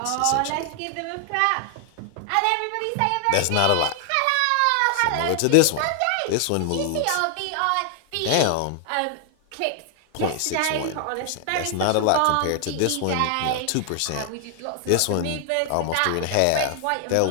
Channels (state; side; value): different; both; correlation 0.00